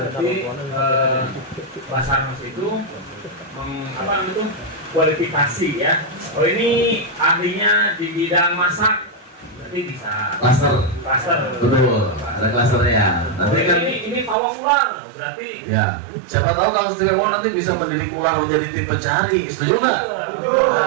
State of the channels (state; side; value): drops out; left; at 14.4 s